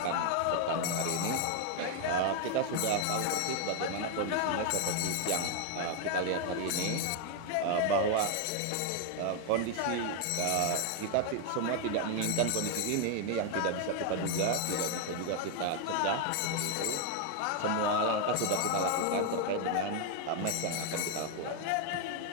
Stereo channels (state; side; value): different; both; correlation 0.01